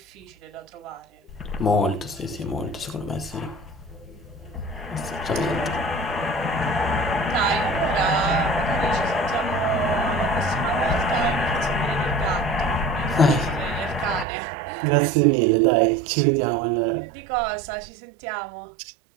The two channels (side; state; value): left; drops out; at 14.2 s